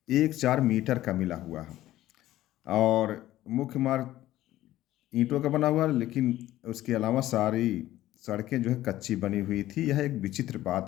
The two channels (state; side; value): quieter; right; 14.7 dB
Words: मीटर का मिला हुआ है। और मुख्य मार्ग ईंटों का बना हुआ, लेकिन उसके अलावा सारी सड़कें जो है कच्ची बनी हुई थी। यह एक विचित्र बात